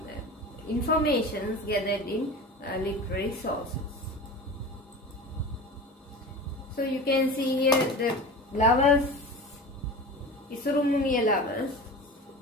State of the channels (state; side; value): normal; both; correlation 0.33